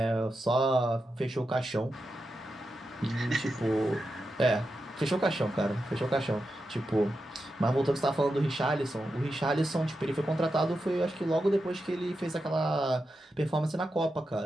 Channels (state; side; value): normal; both; correlation 0.88